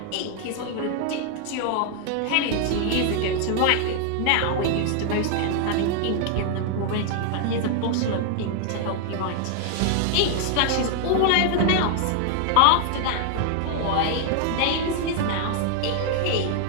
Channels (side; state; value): both; different; correlation 0.00